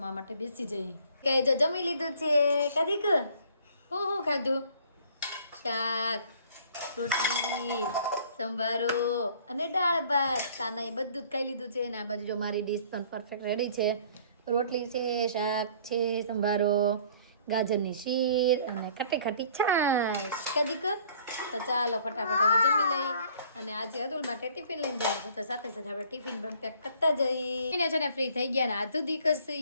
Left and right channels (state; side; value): inverted; both; correlation -0.55